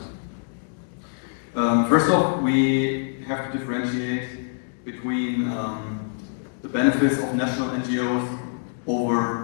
First off, we have to differentiate between the benefits of national NGOs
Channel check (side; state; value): right; silent; digital silence